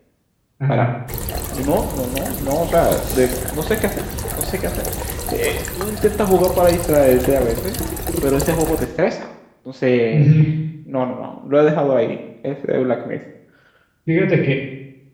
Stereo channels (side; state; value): both; identical; correlation 1.00